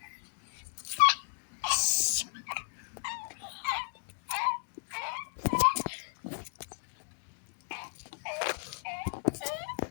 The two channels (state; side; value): silent; right; digital silence